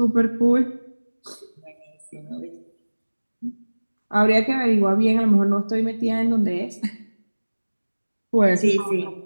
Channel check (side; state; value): both; inverted; correlation -1.00